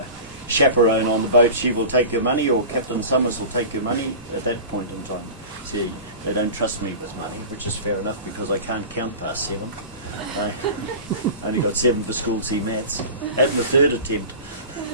chaperone on the boat, she will take your money, or Captain Summers will take your money at that point in time. See, they don't trust me with money, which is fair enough because I can't count past 7. I only got 7 for school C maths at my 3rd attempt.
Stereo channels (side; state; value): both; inverted; correlation -0.33